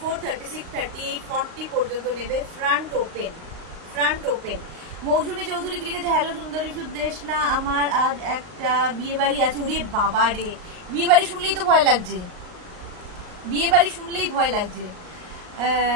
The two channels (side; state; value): left; late; 38 ms